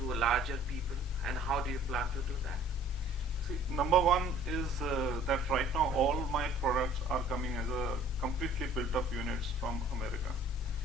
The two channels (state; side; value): normal; both; correlation 0.54